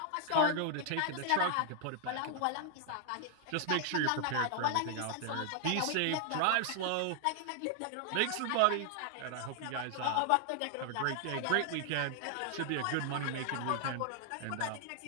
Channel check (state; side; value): different; both; correlation 0.00